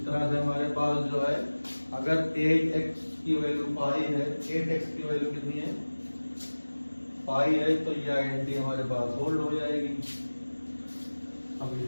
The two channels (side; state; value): both; inverted; correlation -1.00